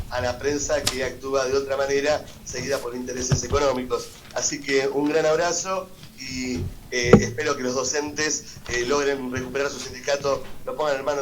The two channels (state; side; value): identical; both; correlation 1.00